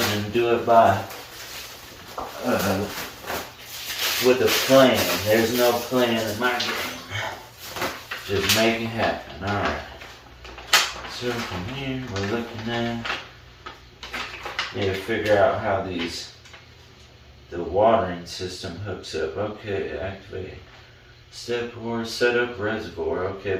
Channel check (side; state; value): both; identical; correlation 1.00